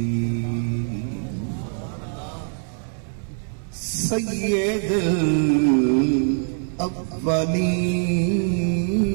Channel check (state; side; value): silent; left; 61 dB below the other